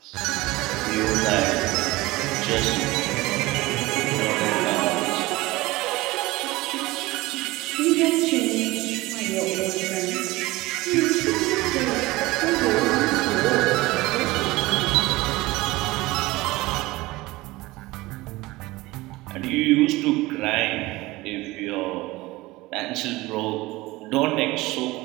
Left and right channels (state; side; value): quieter; left; 20.1 dB